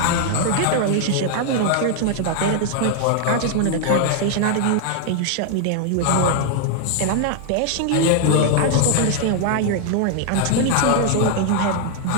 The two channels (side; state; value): both; different; correlation 0.00